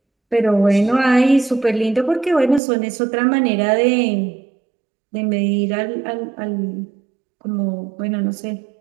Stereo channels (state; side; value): drops out; left; at 2.6 s